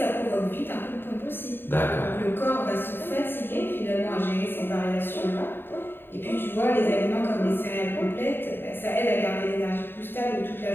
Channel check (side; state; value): right; late; 0.10 ms